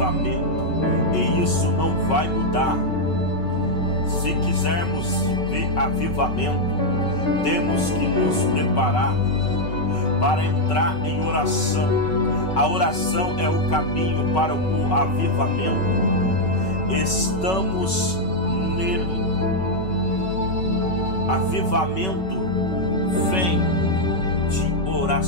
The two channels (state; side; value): late; right; 5.3 ms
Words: e isso não vai mudar. Se quisermos ver avivamento, temos que nos preparar para entrar em oração, A oração é o caminho para o avivamento. Estamos nele. Avivamento vem de